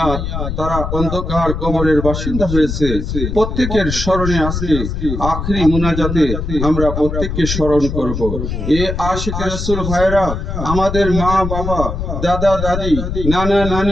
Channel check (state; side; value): noise; left; rumble, 4 dB below the sound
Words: তারা অন্ধকার কবরের বাসিন্দা হয়েছে, প্রত্যেকের স্মরণে আজকে আখরি মুনাজাতে আমরা প্রত্যেককে স্মরণ করব। এ আশিকের রাসূল ভাইরা, আমাদের মা বাবা, দাদা দাদি, নানা